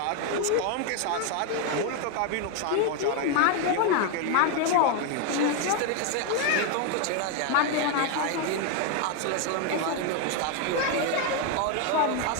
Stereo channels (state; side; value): different; both; correlation 0.01